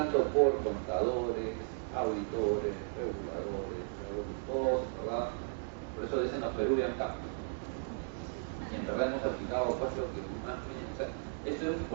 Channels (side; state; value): left; silent; digital silence